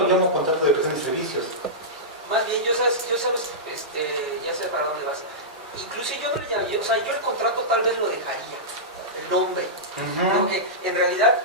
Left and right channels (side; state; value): both; normal; correlation -0.13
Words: lo llamo contrato de prestación de servicios. Más bien, ya sé para dónde vas. Incluso yo no le llamaría, yo el contrato tal vez lo dejaría, el nombre. Porque en realidad